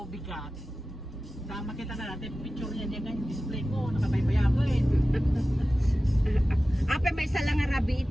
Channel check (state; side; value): normal; both; correlation 0.95